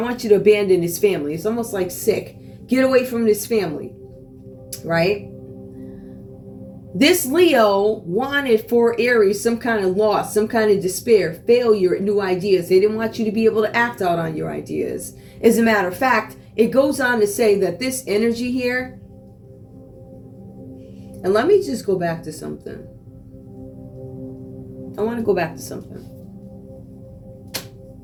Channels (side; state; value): both; identical; correlation 1.00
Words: want you to abandon his family. It's almost like sick. Get away from this family, right? This Leo wanted for Aries some kind of loss, some kind of despair, failure at new ideas. They didn't want you to be able to act out on your ideas. As a matter of fact, it goes on to say that this energy here, and let me just go back to something. I want to go back to something.